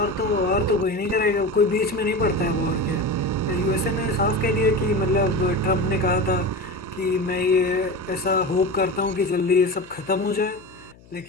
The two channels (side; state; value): left; noise; hum, 25 dB below the sound